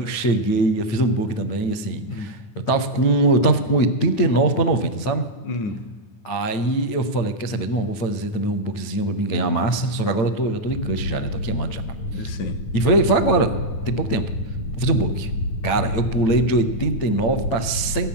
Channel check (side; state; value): right; late; 8.9 ms